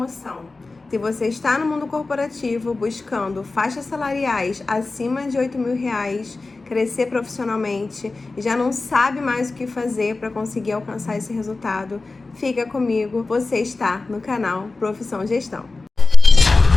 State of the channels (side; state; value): right; quieter; 3.6 dB